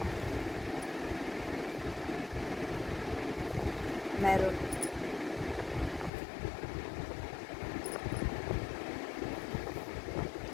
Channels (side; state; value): right; drops out; at 6.1 s